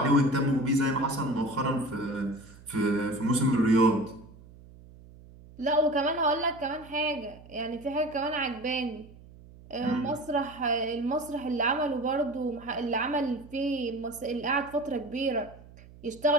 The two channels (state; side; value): noise; right; hum, 21 dB below the sound